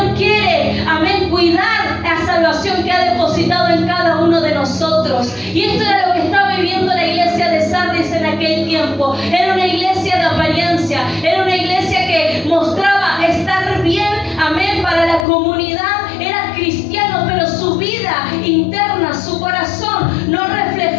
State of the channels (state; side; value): drops out; right; at 15.2 s